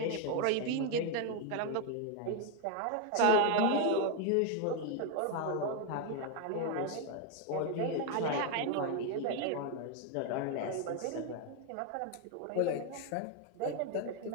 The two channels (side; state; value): both; different; correlation 0.01